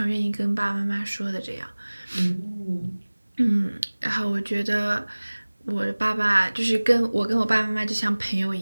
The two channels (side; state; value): both; inverted; correlation -1.00